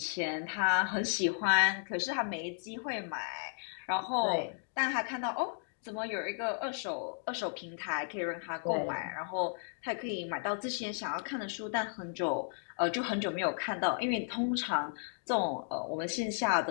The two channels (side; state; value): right; silent; digital silence